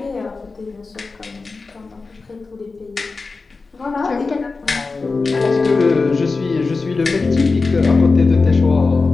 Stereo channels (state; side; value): quieter; right; 4.1 dB